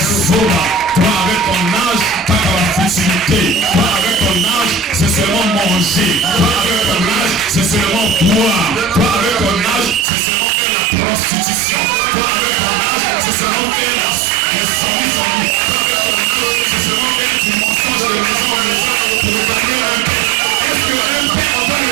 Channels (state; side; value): drops out; left; at 10.1 s